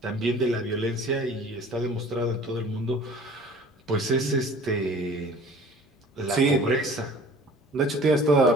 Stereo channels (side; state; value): both; normal; correlation 0.47